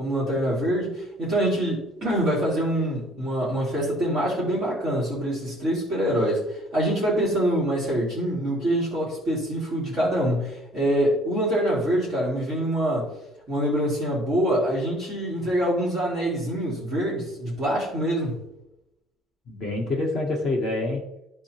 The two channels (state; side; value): normal; both; correlation 0.56